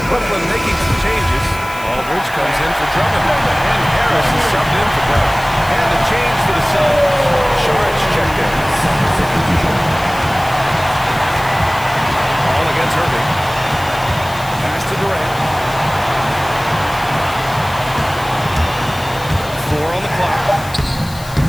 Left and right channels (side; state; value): left; noise; hiss, 17 dB below the sound